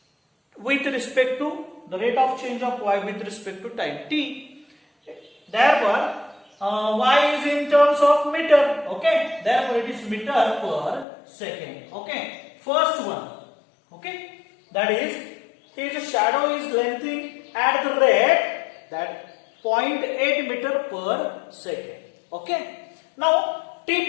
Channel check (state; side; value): drops out; right; at 11.1 s